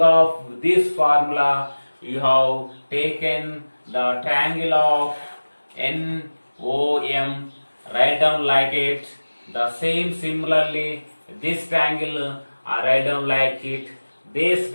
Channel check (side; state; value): both; inverted; correlation -1.00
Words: of this formula, you have taken the triangle of NOM, write down like it, The same similarly, this triangle I write down like it, this